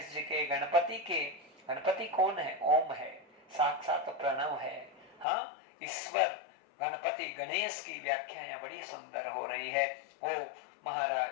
जी के गणपति कौन है? ओम है, साक्षात प्रणव है, हाँ, ईश्वर गणपति गणेश की व्याख्या यहाँ बड़ी सुंदर हो रही है। वो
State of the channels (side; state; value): right; drops out; at 5.2 s